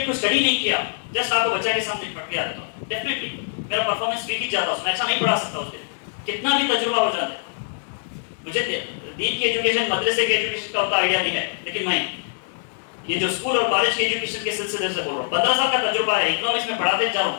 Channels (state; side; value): silent; right; digital silence